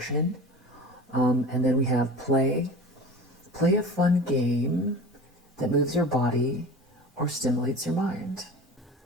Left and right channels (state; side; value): normal; both; correlation 0.36